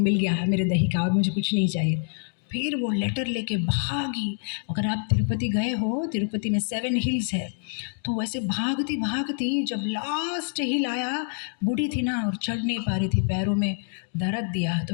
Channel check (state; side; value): silent; right; 59 dB below the other